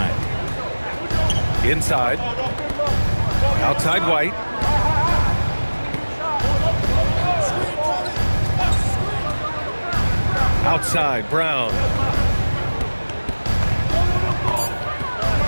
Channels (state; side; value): inverted; both; correlation -1.00